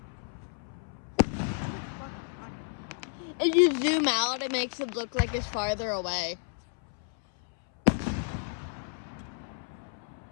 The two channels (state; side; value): silent; right; 57 dB below the other